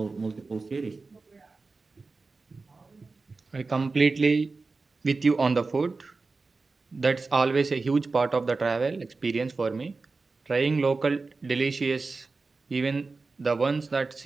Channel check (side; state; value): left; quieter; 3.9 dB